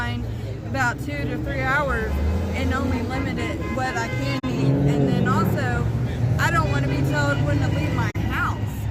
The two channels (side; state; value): both; identical; correlation 1.00